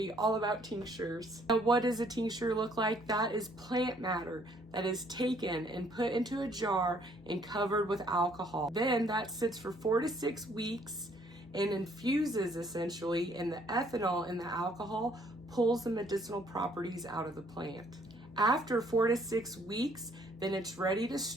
all about tinctures. Now, what does a tincture look like? That is plant matter that is taken and put into a jar and covered with alcohol. Then that sits for 4 to 6 weeks and infuses essentially, and the ethanol in the alcohol pulls the medicinal properties out of the plant. After 4 to 6 weeks, then it's ready to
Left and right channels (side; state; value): both; normal; correlation 0.64